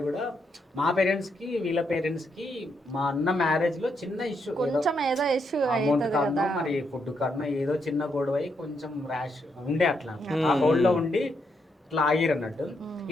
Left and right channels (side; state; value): both; normal; correlation 0.79